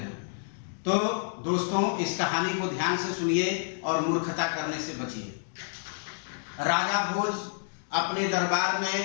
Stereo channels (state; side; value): silent; right; digital silence